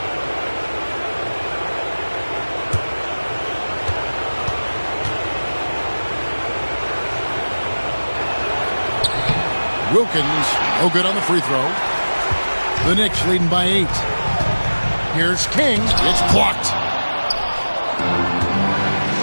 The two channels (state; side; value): inverted; both; correlation -1.00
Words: Wilkins, no good on the free throw. The Knicks leading by 8. Here's King. It's blocked.